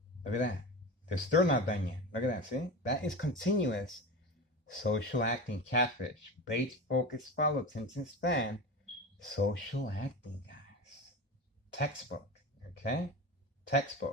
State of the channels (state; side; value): normal; both; correlation 0.27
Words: Look at that. They're still not done yet. Look at that. See? That is continuous social acting, catfish, bait, focus, follow, attention span. Social acting, guys. Textbook. Okay?